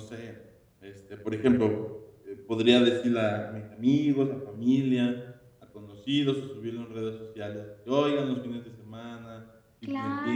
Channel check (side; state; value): both; identical; correlation 1.00